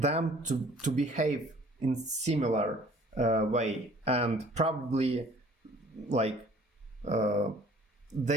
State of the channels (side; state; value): both; normal; correlation 0.53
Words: to behave in similar way, and probably like